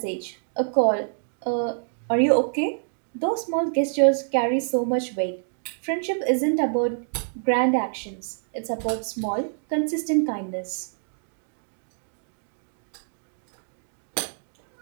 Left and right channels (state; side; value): silent; left; digital silence